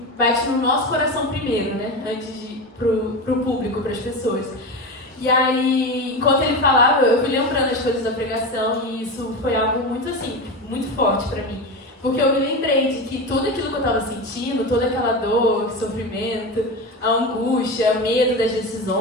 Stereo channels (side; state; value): both; normal; correlation 0.22